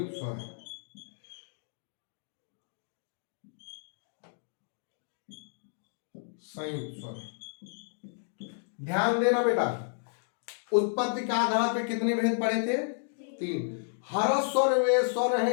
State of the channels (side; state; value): right; silent; digital silence